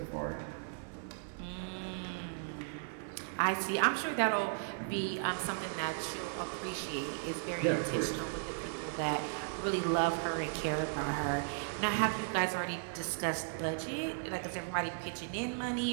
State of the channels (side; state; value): left; silent; 54 dB below the other